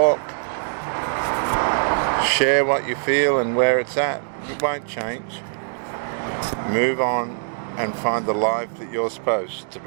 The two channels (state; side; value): silent; left; digital silence